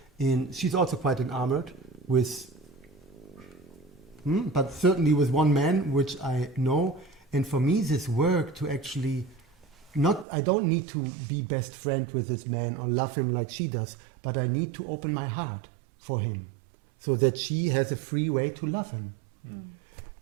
She's also quite enamored with, but certainly with one man, which I know. And for me, this work to actually I don't need to be best friend with this man or love him like she does, but I need to open my heart for him so that she has a free way to love him.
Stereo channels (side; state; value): left; drops out; at 10.2 s